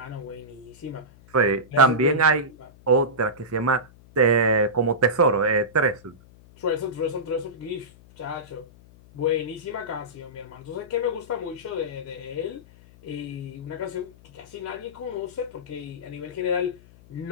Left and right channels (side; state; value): left; noise; hum, 24 dB below the sound